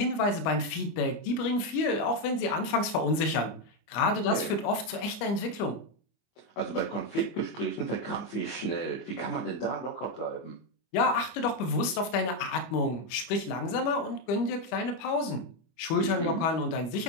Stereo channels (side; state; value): right; late; 25 ms